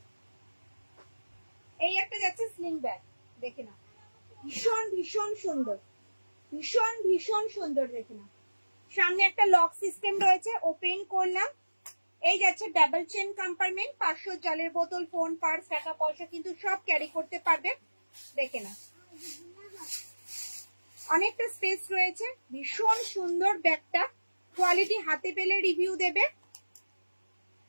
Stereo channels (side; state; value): both; inverted; correlation -1.00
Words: এই একটা যাচ্ছে স্লিং ব্যাগ, দেখে নাও। ভীষণ ভীষণ সুন্দর, ভীষণ ভীষণ সুন্দর, দেখে নাও। সামনে একটা লক সিস্টেম রয়েছে, ওপেন করলাম। এই যাচ্ছে ডাবল চেন কম্পার্টমেন্ট, 500 জলের বোতল, ফোন, পার্স, টাকা পয়সা কিন্তু সব ক্যারি করতে পারবে, দেখে নাও। অনেকটা স্পেস রয়েছে, ভীষণ সুন্দর ব্যাগটা। কোয়ালিটি হাতে পেলে রিভিউ দেবে।